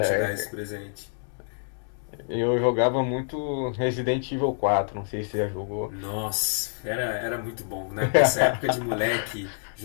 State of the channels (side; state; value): right; silent; digital silence